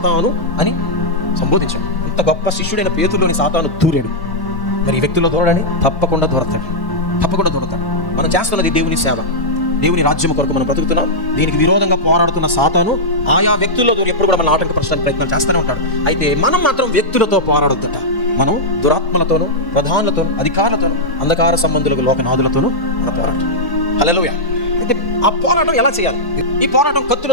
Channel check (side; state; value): right; late; 1.1 ms